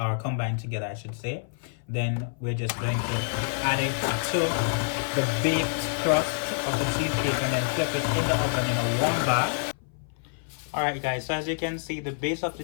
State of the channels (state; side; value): silent; right; 57 dB below the other